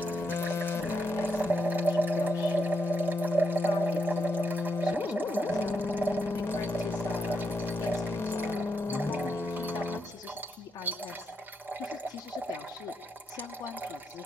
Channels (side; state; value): both; normal; correlation 0.82